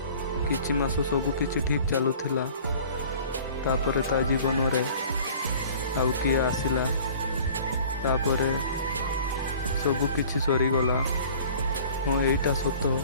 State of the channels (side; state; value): both; inverted; correlation -0.47